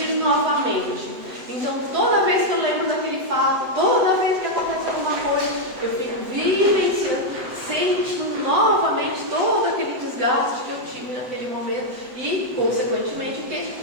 novamente. Então, toda vez que eu lembro daquele fato, toda vez que acontece alguma coisa, eu fico vivenciando, sentindo novamente todo aquele desgaste que eu tive naquele momento e, consequentemente, o quê?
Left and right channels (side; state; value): left; late; 7.9 ms